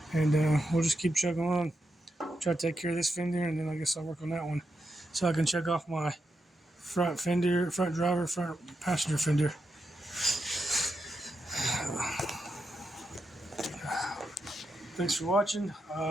and we'll just keep chugging along. Try to take care of this fender, and then I guess I'll work on that one, so I can check off my front fender, front driver, front passenger fender. Thanks for watching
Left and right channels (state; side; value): normal; both; correlation 0.86